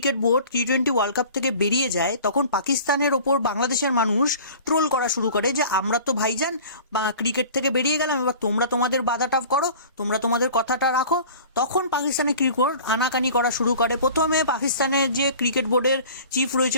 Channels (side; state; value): both; inverted; correlation -0.43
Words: বোর্ড টি-20 ওয়ার্ল্ড কাপ থেকে বেরিয়ে যায়, তখন পাকিস্তানের ওপর বাংলাদেশের মানুষ ট্রোল করা শুরু করে যে আমরা তো ভাইজান ক্রিকেট থেকে বেরিয়ে গেলাম, এবার তোমরা তোমাদের বাধাটা করো, তোমরা তোমাদের কথাটা রাখো। তখন পাকিস্তানের ক্রিকেট বোর্ড আনাকানি করা শুরু করে। প্রথমে পাকিস্তানের যে ক্রিকেট বোর্ডের চিফ